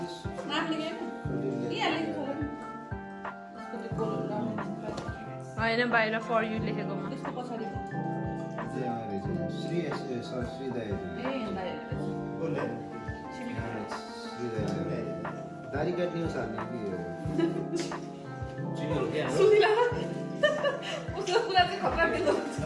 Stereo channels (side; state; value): both; identical; correlation 1.00